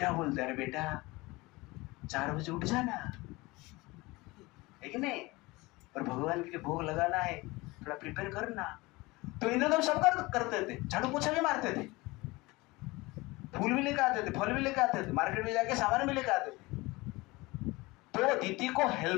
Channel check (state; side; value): quieter; right; 22.3 dB